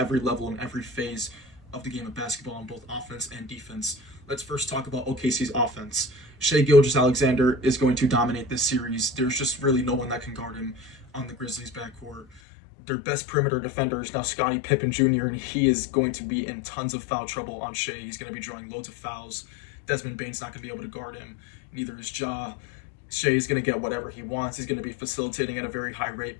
level and every phase of the game of basketball on both offense and defense. Let's first talk about OKC's offense. Shai Gilgeous-Alexander is going to dominate this series. There's just really no one that can guard him on the Grizzlies' backcourt. Their best perimeter defender is now Scottie Pippen Jr., and he is going to be in tons of foul trouble on Shai. He's going to be drawing loads of fouls. Desmond Bane's not going to be able to guard him. Neither is Ja. Shai is going to get whatever he wants. He's going to be facilitating at a very high rate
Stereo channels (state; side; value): drops out; right; at 12.4 s